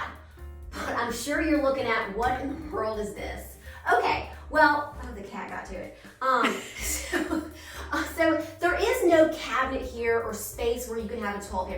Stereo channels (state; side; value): identical; both; correlation 1.00